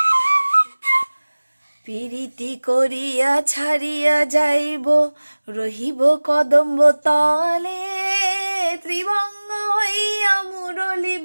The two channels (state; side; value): inverted; both; correlation -1.00